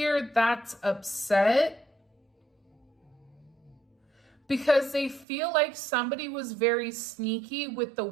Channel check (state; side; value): drops out; left; at 5.2 s